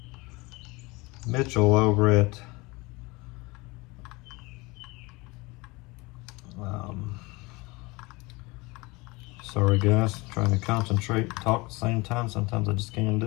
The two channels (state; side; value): quieter; right; 24.4 dB